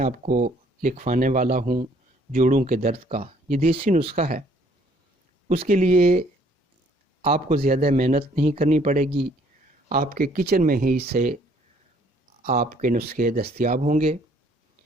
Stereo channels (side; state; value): both; normal; correlation 0.62